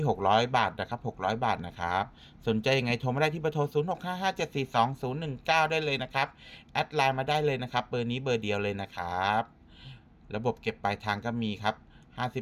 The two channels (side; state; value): both; identical; correlation 1.00